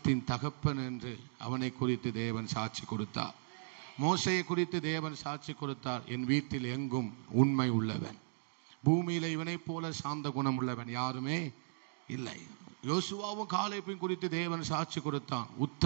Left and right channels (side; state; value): left; silent; digital silence